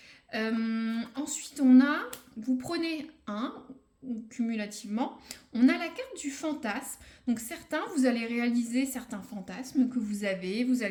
Ensuite, vous prenez un, ou cumulativement, on a la carte du fantasme. Donc certains, vous allez réaliser certains fantasmes que vous allez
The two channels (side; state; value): both; identical; correlation 1.00